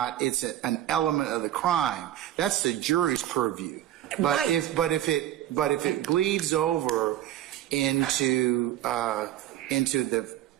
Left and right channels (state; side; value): quieter; left; 12.7 dB